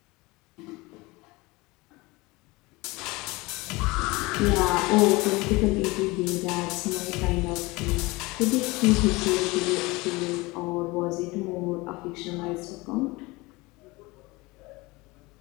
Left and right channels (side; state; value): right; quieter; 23.1 dB